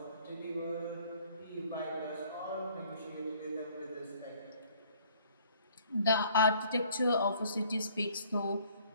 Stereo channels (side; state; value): both; inverted; correlation -0.59